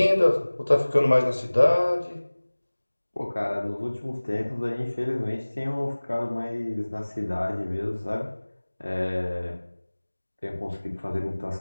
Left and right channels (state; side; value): inverted; both; correlation -1.00